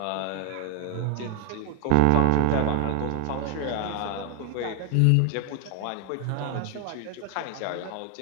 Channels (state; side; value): different; both; correlation 0.00